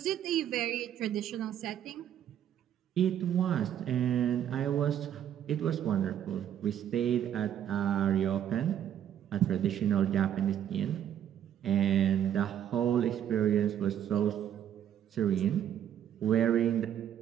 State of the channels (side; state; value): left; quieter; 10.1 dB